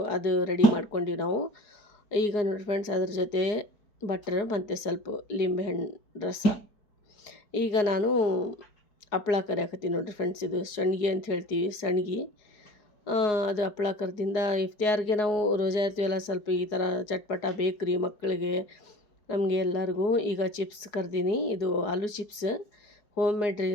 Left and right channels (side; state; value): right; late; 4.8 ms